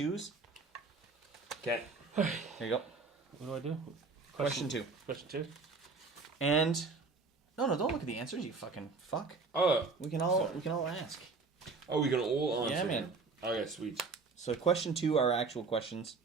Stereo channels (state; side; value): quieter; left; 4.3 dB